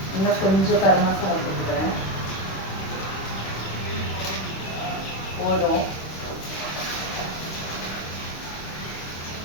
இன்னும் கொஞ்சம் கரம் மசாலா போட்டுக்கிறேன், போதும்.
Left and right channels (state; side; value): late; right; 26 ms